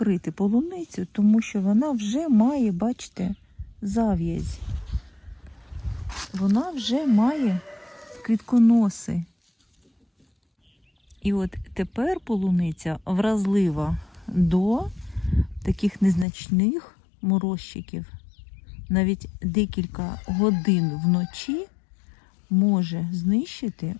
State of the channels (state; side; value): drops out; right; at 16.2 s